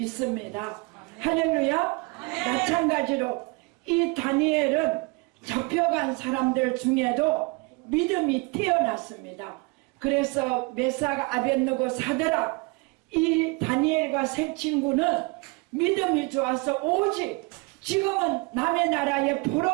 할렐루야. 마찬가지로 이 다니엘은 잡혀간 사람들 중에도 믿음이 뛰어났습니다. 그래서 메삭 아벳느고 사드락 이 다니엘과 세 친구는 믿음이 좋아서 오직 지금은 남의 나라에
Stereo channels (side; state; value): left; quieter; 28.0 dB